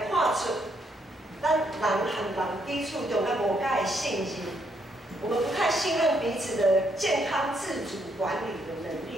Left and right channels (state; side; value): normal; both; correlation 0.74